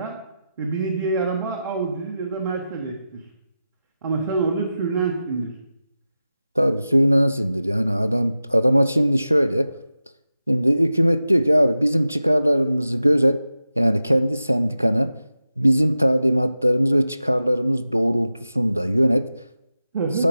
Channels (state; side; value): inverted; both; correlation -0.93